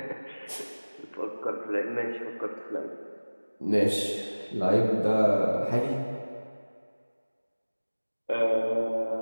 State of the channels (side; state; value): both; inverted; correlation -1.00